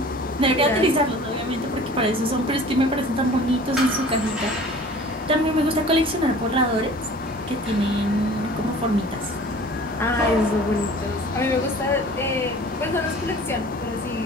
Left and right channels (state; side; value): normal; both; correlation 0.45